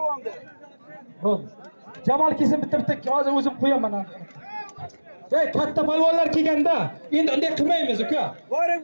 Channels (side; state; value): both; inverted; correlation -1.00